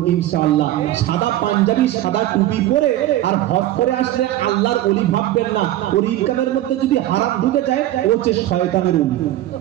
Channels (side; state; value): left; quieter; 14.1 dB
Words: ইনশাআল্লাহ। সাদা পাঞ্জাবি, সাদা টুপি পরে আর হজ করে আসলে আল্লাহর ওলি ভাববেন না। ওর ইনকামের মধ্যে যদি হারাম ঢুকে যায়, ও হচ্ছে শয়তানের ওলি।